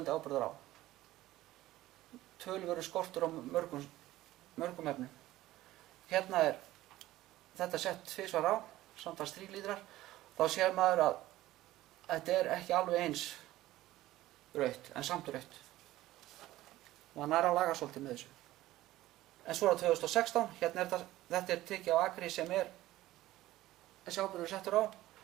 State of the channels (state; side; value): quieter; left; 15.9 dB